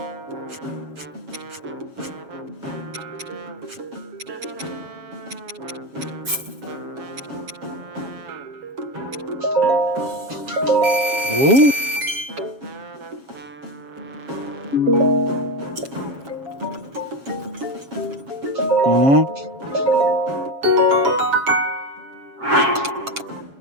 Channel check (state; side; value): late; left; 7.3 ms